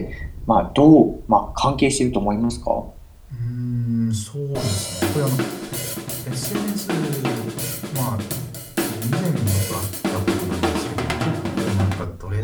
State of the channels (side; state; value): both; identical; correlation 1.00